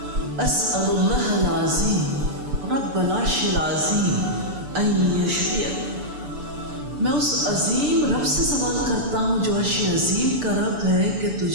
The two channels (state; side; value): late; left; 6.9 ms